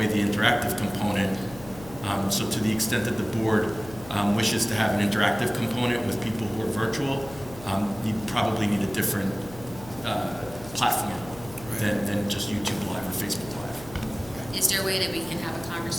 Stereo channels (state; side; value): noise; left; hum, 17 dB below the sound